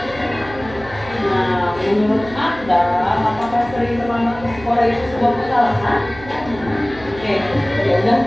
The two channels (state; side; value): noise; right; hum, 17 dB below the sound